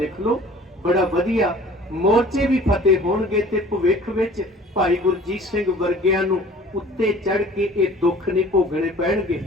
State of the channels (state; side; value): normal; both; correlation 0.48